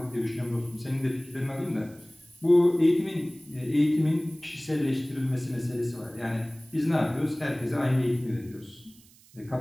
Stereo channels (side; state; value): right; noise; hiss, 26 dB below the sound